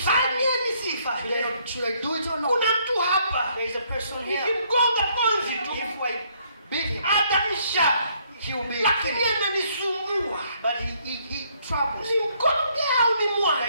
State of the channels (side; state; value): both; inverted; correlation -0.68